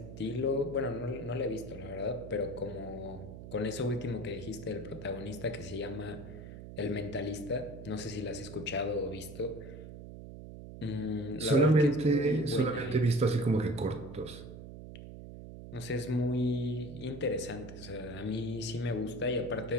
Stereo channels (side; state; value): right; noise; hum, 12 dB below the sound